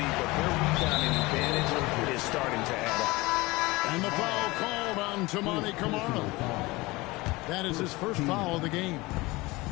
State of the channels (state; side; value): quieter; right; 22.0 dB